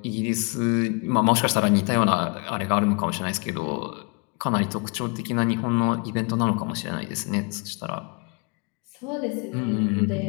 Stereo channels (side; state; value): right; quieter; 33.1 dB